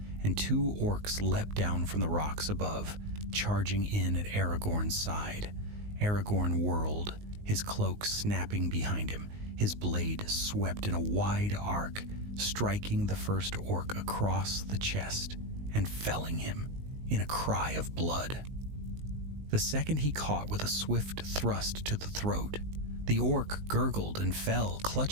and two orcs leapt down from the rocks above, charging in at Aragorn's side. Aragorn whirled, his cloak snapping behind him. His blade swept in a wide arc, striking the first orc across the chest and felling him in a cry of blood. The second he caught with a swift thrust to the throat. The orc gurgled and fell,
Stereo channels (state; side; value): late; left; 19 ms